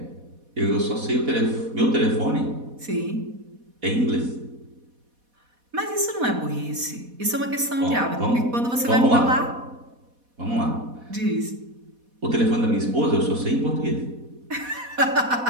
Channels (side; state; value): left; late; 4.1 ms